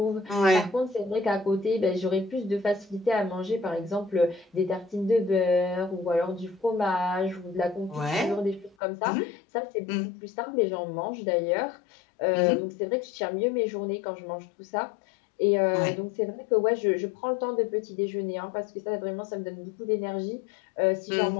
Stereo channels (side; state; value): right; drops out; at 8.8 s